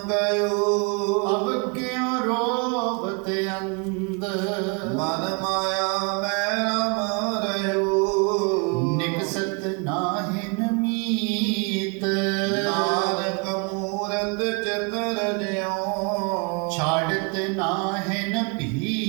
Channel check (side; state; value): left; quieter; 33.3 dB